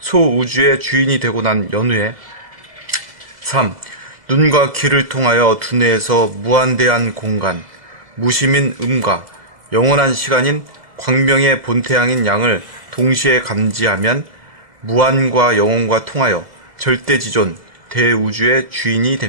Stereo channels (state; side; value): late; left; 1.8 ms